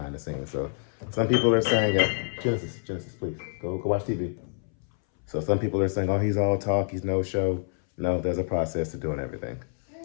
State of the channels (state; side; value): silent; right; 60 dB below the other